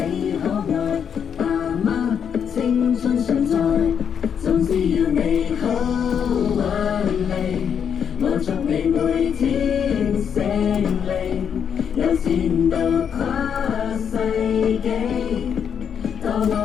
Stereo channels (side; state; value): right; quieter; 7.7 dB